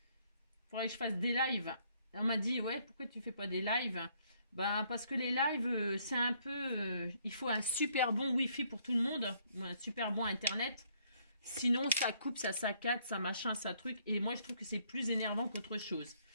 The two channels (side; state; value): both; inverted; correlation -0.67